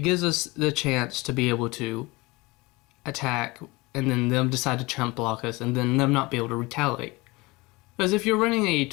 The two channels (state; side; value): quieter; right; 23.2 dB